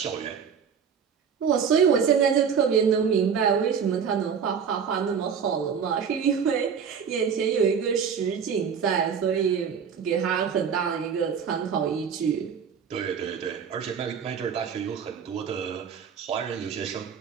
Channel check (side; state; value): left; quieter; 7.0 dB